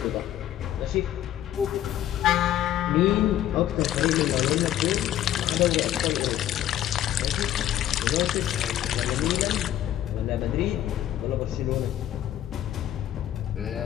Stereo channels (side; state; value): right; quieter; 12.1 dB